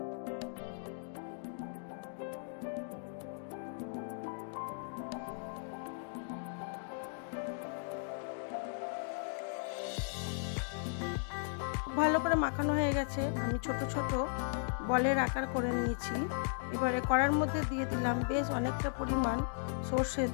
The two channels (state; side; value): silent; right; digital silence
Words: ভালো করে মাখানো হয়ে গেছে। আমি ছোট ছোট বলের আকার করে নিয়েছি। এবারে কড়ার মধ্যে দিয়ে দিলাম বেশ অনেকটা পরিমাণ সরষের